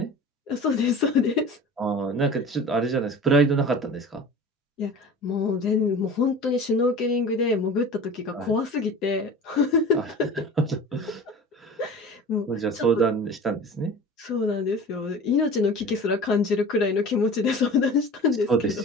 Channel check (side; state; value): both; normal; correlation 0.38